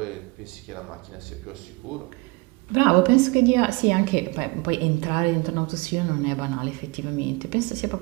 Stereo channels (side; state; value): left; quieter; 26.4 dB